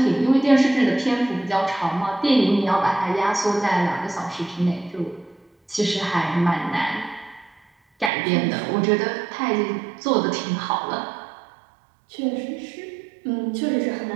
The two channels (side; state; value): left; drops out; at 8.1 s